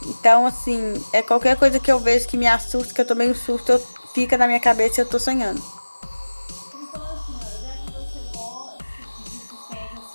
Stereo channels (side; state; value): both; inverted; correlation -1.00